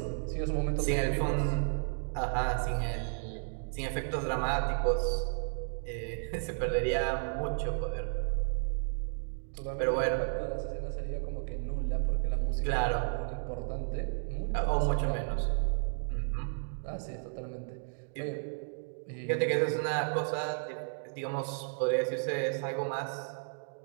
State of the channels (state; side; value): silent; left; digital silence